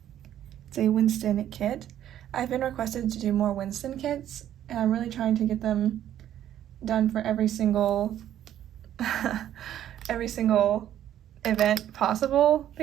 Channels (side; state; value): left; quieter; 11.3 dB